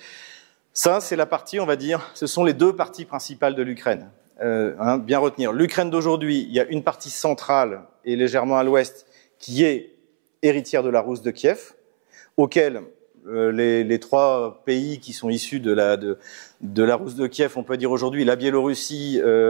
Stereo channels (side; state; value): left; silent; 65 dB below the other